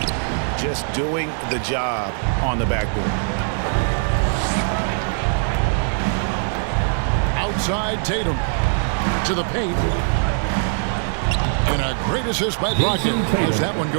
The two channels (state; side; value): silent; left; 59 dB below the other